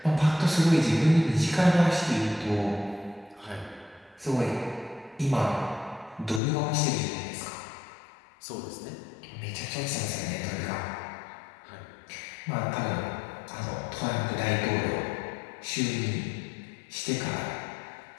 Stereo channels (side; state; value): right; drops out; at 6.4 s